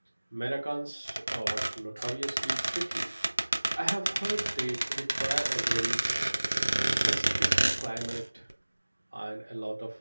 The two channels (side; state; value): both; inverted; correlation -1.00